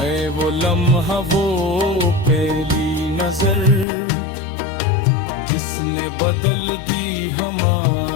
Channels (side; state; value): right; drops out; at 3.9 s